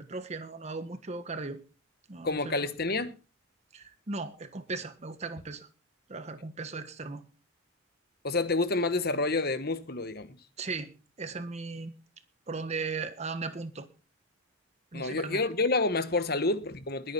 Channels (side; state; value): both; normal; correlation 0.01